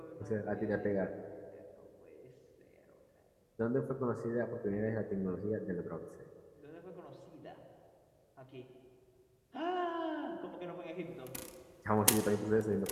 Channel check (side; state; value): both; identical; correlation 1.00